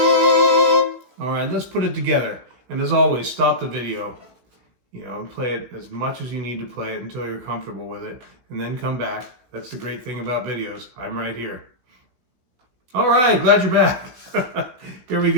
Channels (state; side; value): late; left; 16 ms